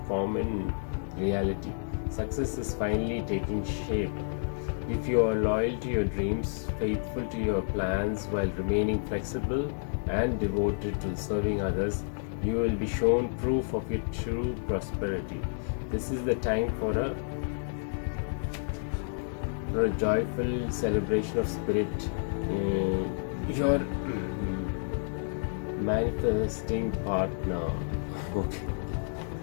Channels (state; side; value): silent; right; 57 dB below the other